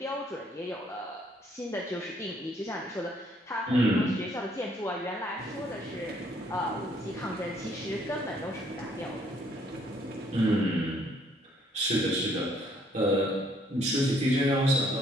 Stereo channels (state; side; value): normal; both; correlation 0.65